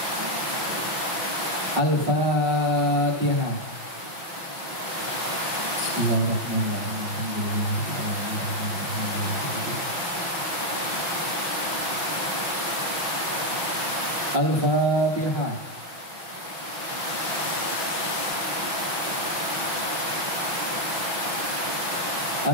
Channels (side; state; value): left; late; 5.9 ms